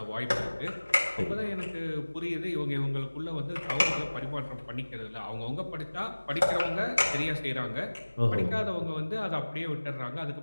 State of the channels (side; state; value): both; inverted; correlation -1.00